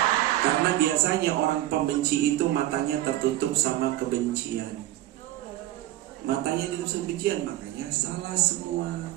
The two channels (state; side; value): quieter; left; 14.9 dB